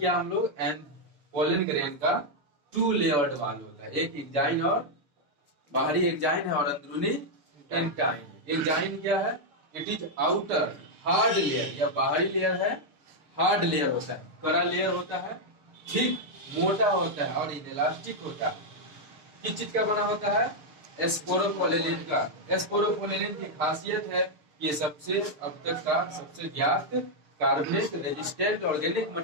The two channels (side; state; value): left; late; 6.6 ms